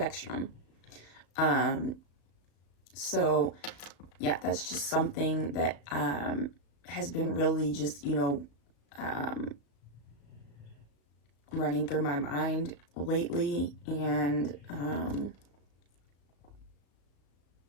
So yeah, that's just something that has been really just, running through my mind lately. And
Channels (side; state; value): right; late; 35 ms